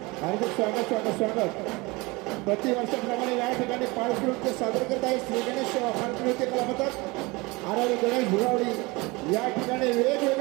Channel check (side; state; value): left; quieter; 24.3 dB